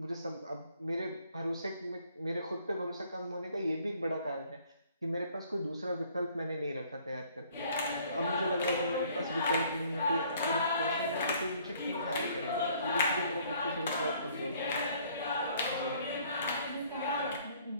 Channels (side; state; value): both; inverted; correlation -0.60